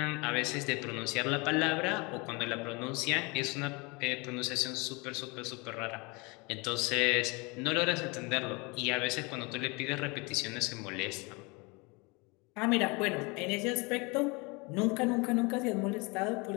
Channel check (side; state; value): right; quieter; 27.7 dB